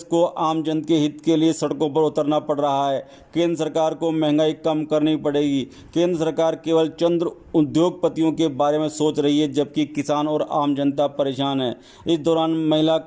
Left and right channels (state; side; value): identical; both; correlation 1.00